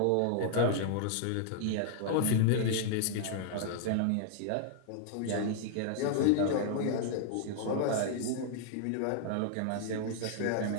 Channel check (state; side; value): different; both; correlation 0.00